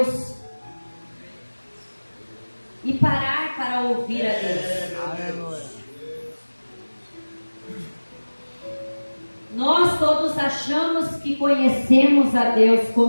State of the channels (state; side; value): inverted; both; correlation -1.00